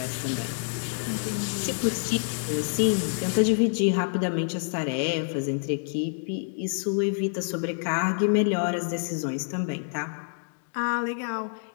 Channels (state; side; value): silent; right; digital silence